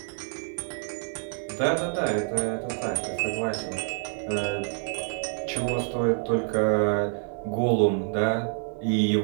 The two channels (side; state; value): left; silent; 60 dB below the other